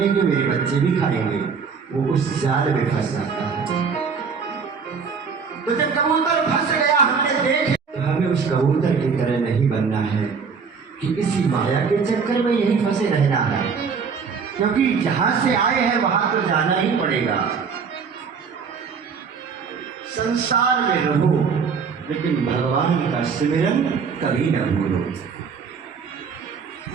मेरे बच्चे भी खाएंगे, वो उस जाल में फंस जाता है। तो जब कबूतर फंस गया हमने देखे, तो हमें उस कबूतर की तरह नहीं बनना है कि इसी माया के चक्कर में यही फंसे रहना है, क्योंकि जहां से आए हैं वहां तो जाना ही पड़ेगा। संसार में रहो लेकिन भगवान का सिमरन कभी न भूलो।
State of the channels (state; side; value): quieter; left; 5.7 dB